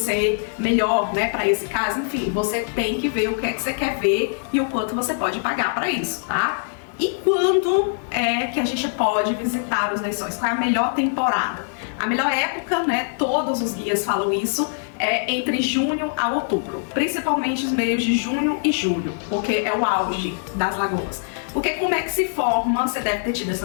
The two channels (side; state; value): right; silent; digital silence